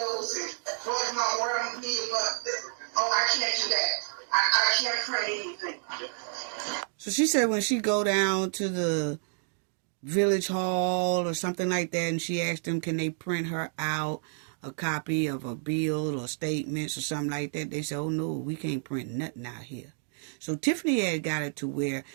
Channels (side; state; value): left; silent; digital silence